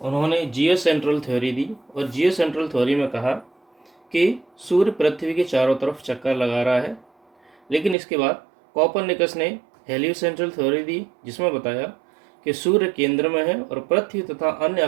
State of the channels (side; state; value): left; drops out; at 8.0 s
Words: उन्होंने जियो सेंट्रल थ्योरी दी और जियो सेंट्रल थ्योरी में कहा कि सूर्य पृथ्वी के चारों तरफ चक्कर लगा रहा है। लेकिन इसके बाद कोपरनिकस ने हेलियोसेंट्रल थ्योरी दी, जिसमें बताया कि सूर्य केंद्र में है और पृथ्वी तथा अन्य